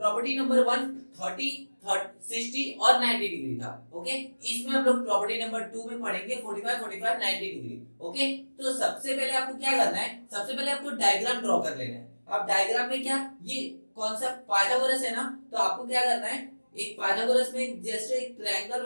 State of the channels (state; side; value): inverted; both; correlation -1.00